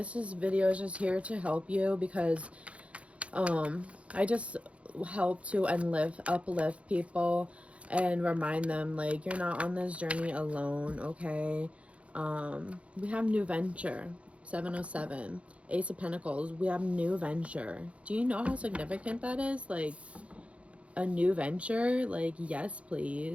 video is just here to help you, because I just help to uplift people and remind them, like, you're not on this journey alone, okay? We have new venture, 707, Ace of Pentacles. We have new venture. Do you know how significant that is? Like, a new venture? Like, yes,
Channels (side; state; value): left; late; 0.063 ms